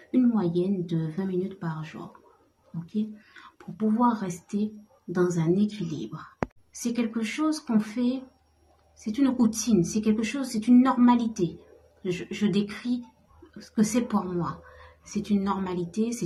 une moyenne de 20 minutes par jour. Okay? Pour pouvoir rester dans un équilibre. C'est quelque chose qu'on fait, c'est une routine, c'est quelque chose, c'est une normalité. Je décris ce que c'est pour moi. C'est une normalité,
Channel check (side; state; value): both; identical; correlation 1.00